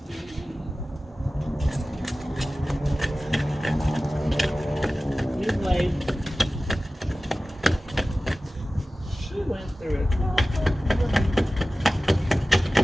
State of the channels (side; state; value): both; normal; correlation 0.96